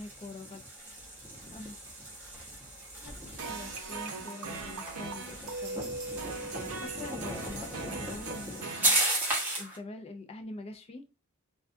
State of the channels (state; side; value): normal; both; correlation 0.05